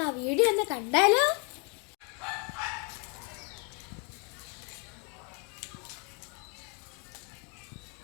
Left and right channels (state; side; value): quieter; right; 35.8 dB